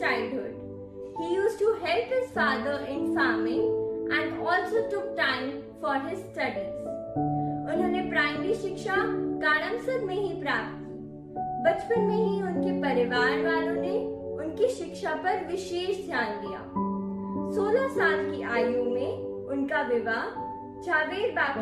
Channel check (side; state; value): both; identical; correlation 1.00